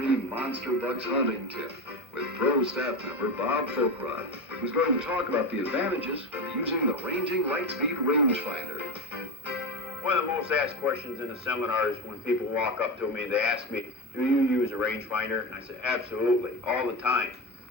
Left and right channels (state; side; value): normal; both; correlation 0.21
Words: Monster Bucks hunting tip with pro staff member Bob Folkrod, who's going to talk about the advantages of using the ranging Lightspeed rangefinder. One of the most asked questions in the seminars when people walk up to me, they ask me, do you use a rangefinder? And I say, absolutely, all the time.